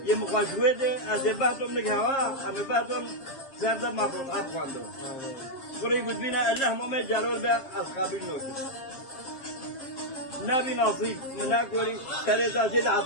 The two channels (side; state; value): right; late; 7.5 ms